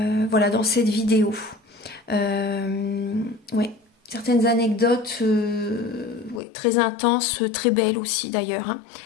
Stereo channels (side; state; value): right; drops out; at 6.4 s